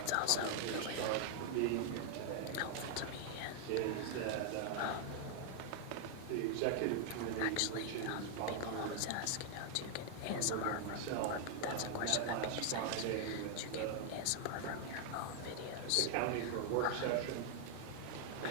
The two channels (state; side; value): different; both; correlation 0.00